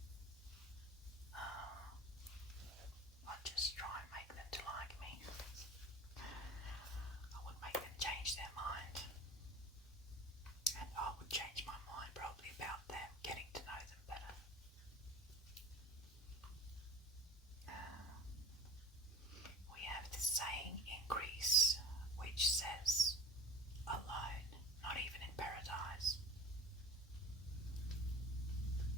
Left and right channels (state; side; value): normal; both; correlation 0.35